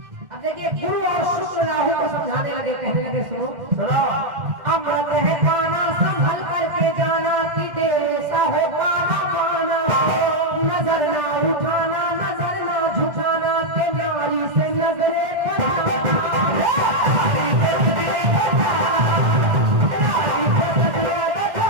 अब देखिए गुरु और शुक्र राहु को समझाने लगे, कहने लगे सुनो सुनो। अमृत है पाना संभल करके जाना कि तेरे सा हो पाना पाना, नजर ना उठाना नजर ना झुकाना के नारी से नजरे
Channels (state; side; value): late; left; 1.5 ms